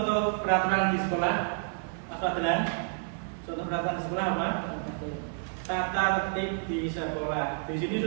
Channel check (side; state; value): left; silent; 58 dB below the other